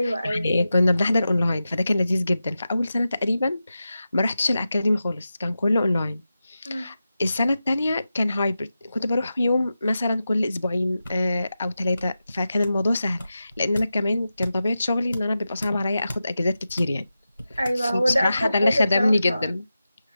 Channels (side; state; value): both; inverted; correlation -0.92